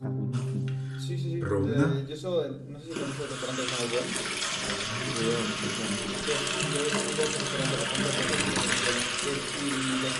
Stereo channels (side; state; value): both; identical; correlation 1.00